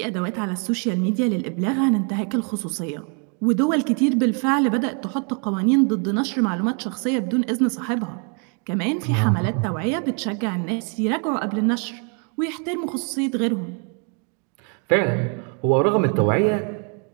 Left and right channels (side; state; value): left; quieter; 39.0 dB